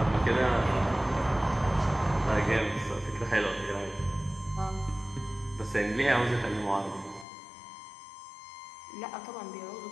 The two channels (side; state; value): right; drops out; at 7.2 s